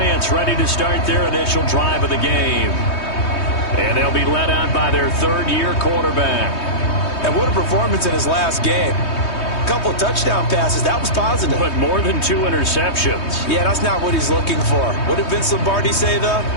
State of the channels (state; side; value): late; right; 3.2 ms